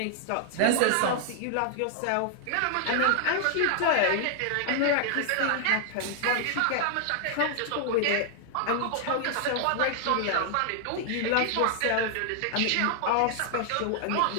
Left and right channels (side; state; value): both; different; correlation -0.01